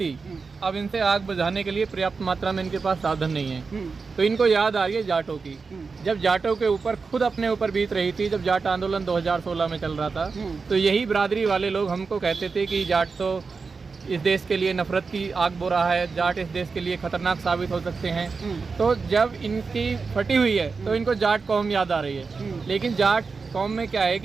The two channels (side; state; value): left; quieter; 4.7 dB